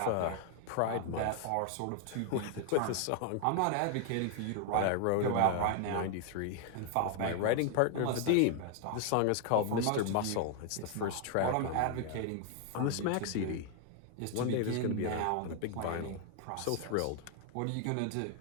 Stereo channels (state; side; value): different; both; correlation 0.00